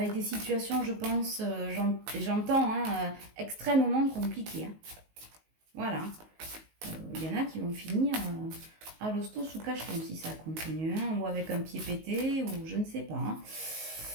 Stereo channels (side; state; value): left; late; 19 ms